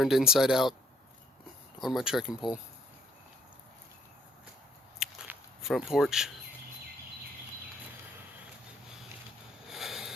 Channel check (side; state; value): both; normal; correlation 0.66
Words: inside out on my trekking pole. Front porch.